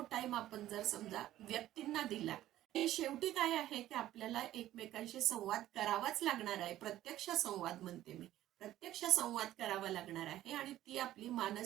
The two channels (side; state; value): left; quieter; 13.8 dB